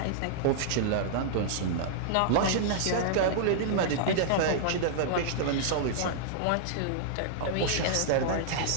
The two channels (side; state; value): both; different; correlation -0.02